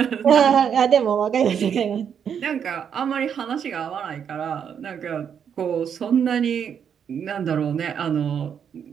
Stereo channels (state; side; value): quieter; left; 7.9 dB